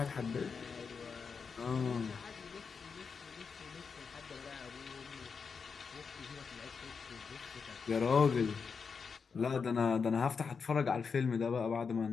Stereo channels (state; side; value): quieter; right; 5.6 dB